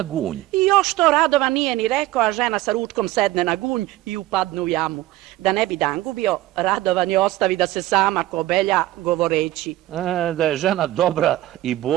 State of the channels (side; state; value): left; quieter; 16.1 dB